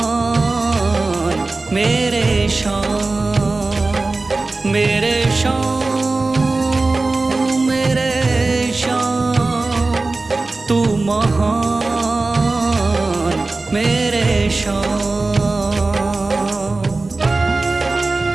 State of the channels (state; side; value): quieter; left; 3.4 dB